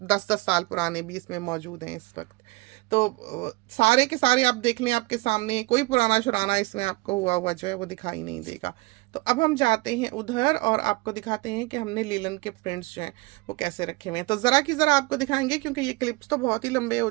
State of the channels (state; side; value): quieter; left; 23.6 dB